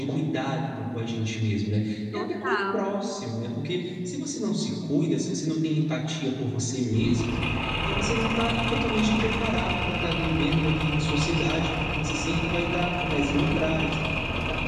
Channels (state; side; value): identical; both; correlation 1.00